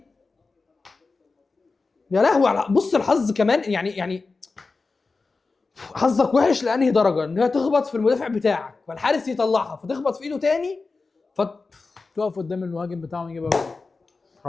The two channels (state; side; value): quieter; right; 4.0 dB